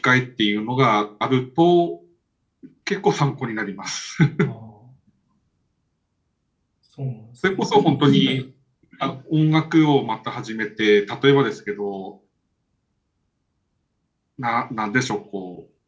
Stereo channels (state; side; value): identical; both; correlation 1.00